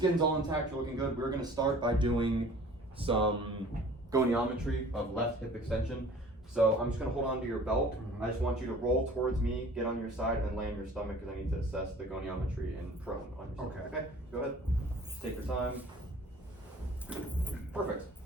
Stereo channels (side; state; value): both; normal; correlation 0.49